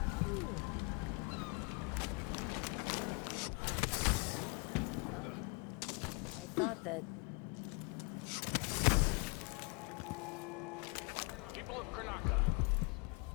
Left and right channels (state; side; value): quieter; right; 31.6 dB